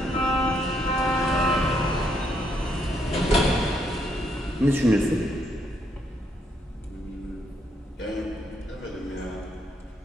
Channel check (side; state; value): both; normal; correlation 0.74